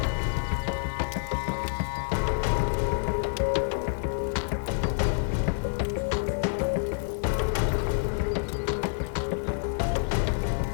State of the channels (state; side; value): silent; right; digital silence